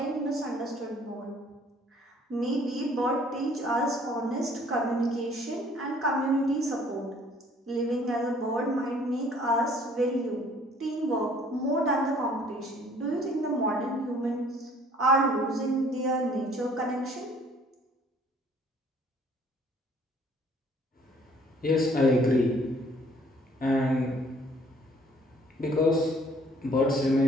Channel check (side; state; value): both; normal; correlation 0.57